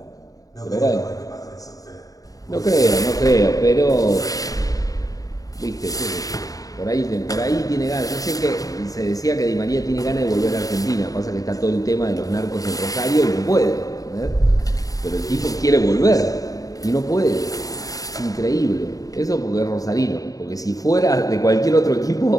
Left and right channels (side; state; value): right; late; 0.17 ms